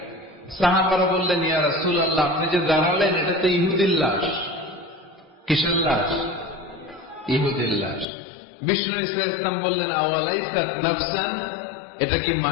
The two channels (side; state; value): right; drops out; at 8.1 s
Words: সাহাবারা বললেন, ইয়া রাসূলুল্লাহ, আপনি যে দাঁড়ালেন এটা তো ইহুদির লাশ। কিসের লাশ? ইহুদির লাশ। বিষ্ণু ইসলাম বললেন, আওয়ালাইসাত নাফসান, এটা কি